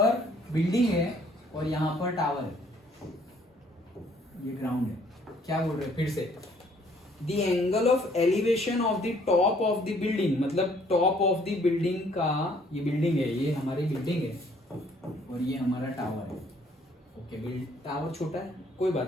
बिल्डिंग है और यहाँ पर टावर है. ये ग्राउंड है. क्या बोल रहे हैं फिर से. The angle of elevation of the top of the building मतलब टॉप ऑफ द बिल्डिंग का. ये बिल्डिंग है. ये हमारी बिल्डिंग है और ये हमारा टावर है. ओके टावर छोटा है कोई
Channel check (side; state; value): both; normal; correlation 0.62